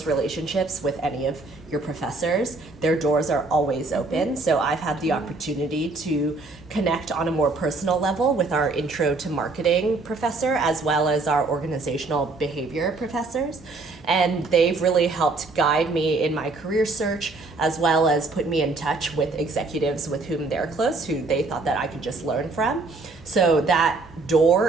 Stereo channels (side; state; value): left; quieter; 3.5 dB